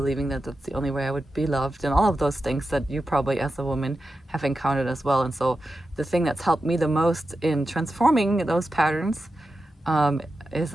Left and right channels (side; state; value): both; normal; correlation 0.91